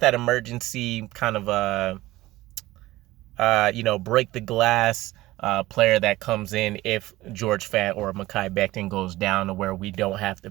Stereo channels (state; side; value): quieter; left; 17.7 dB